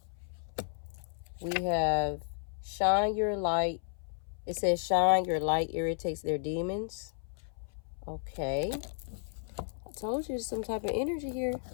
We have shine your light. It says shine your light irritates their demons. Okay. I told you some type of energy here.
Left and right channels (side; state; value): right; silent; 56 dB below the other